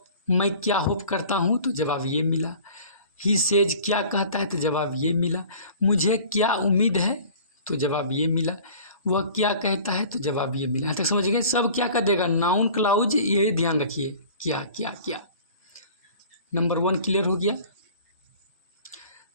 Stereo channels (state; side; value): inverted; both; correlation -0.46